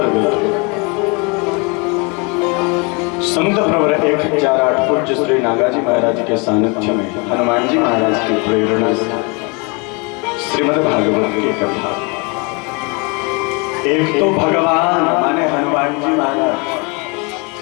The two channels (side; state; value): right; quieter; 31.1 dB